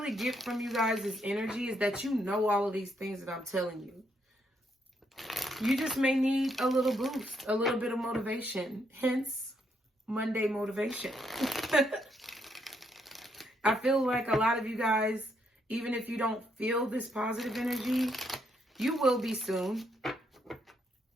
get from you guys' energy is that you know all of these things that I'm telling you. You just may need a little boost, a little bit of motivation. Hence, Monday motivation. I feel like a lot of you guys, even if you don't feel this positive energy, you will be soon.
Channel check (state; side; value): normal; both; correlation 0.75